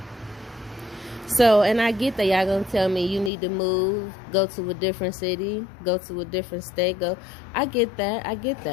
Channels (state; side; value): drops out; right; at 3.3 s